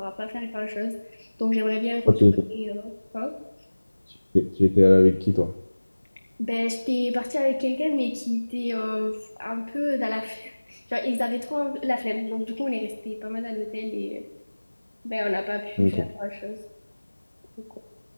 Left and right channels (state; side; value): inverted; both; correlation -1.00